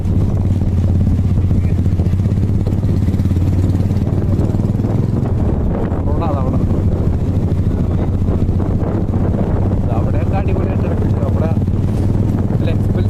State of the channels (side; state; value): both; identical; correlation 1.00